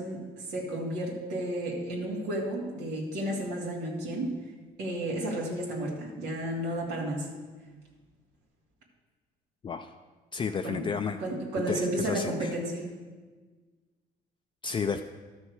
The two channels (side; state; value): both; normal; correlation 0.47